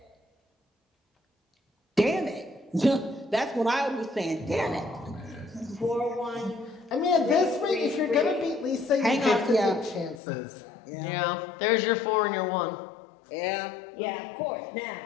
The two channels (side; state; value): right; drops out; at 10.2 s